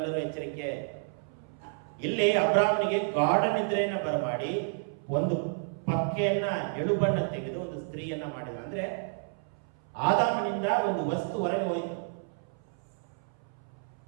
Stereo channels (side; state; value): left; silent; 57 dB below the other